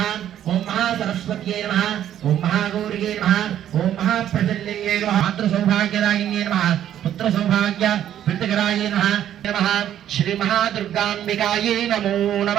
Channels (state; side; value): quieter; left; 10.9 dB